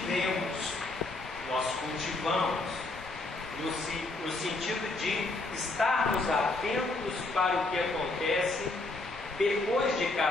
cultivamos no sentido de estarmos atentos para o que acontece depois de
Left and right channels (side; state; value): right; quieter; 3.1 dB